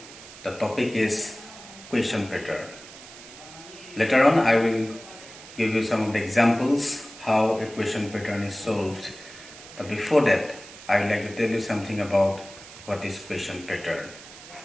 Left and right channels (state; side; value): noise; right; hiss, 17 dB below the sound